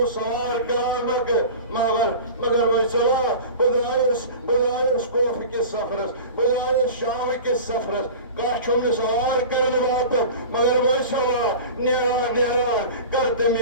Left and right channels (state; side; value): inverted; both; correlation -0.35